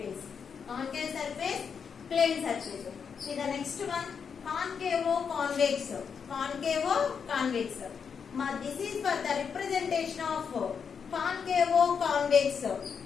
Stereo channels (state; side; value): quieter; right; 6.5 dB